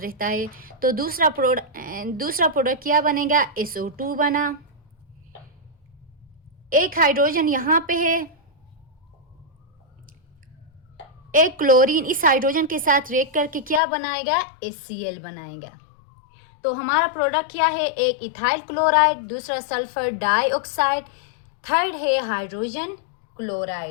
है। तो दूसरा प्रोडक्ट क्या बनेगा? SO2 बना। एक हाइड्रोजन यहाँ पे है, एक क्लोरीन इस हाइड्रोजन के साथ रिएक्ट करके क्या बनाएगा? HCl बनाएगा। तो हमारा प्रोडक्ट क्या है? एक इथाइल क्लोराइड, दूसरा सल्फर डाइऑक्साइड, थर्ड है हाइड्रोजन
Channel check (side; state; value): right; drops out; at 13.8 s